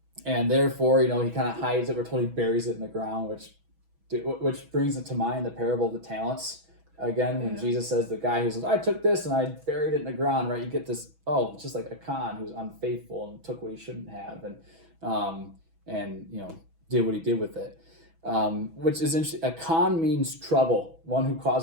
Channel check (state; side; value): late; left; 6.1 ms